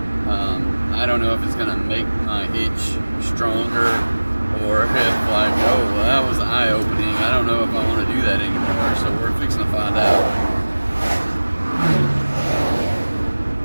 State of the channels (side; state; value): both; inverted; correlation -1.00